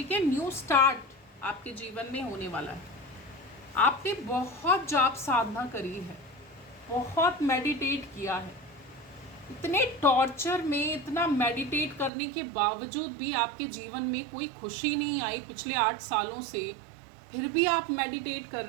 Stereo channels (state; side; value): drops out; left; at 12.1 s